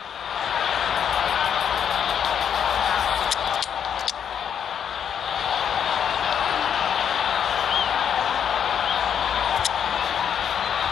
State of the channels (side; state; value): right; quieter; 8.3 dB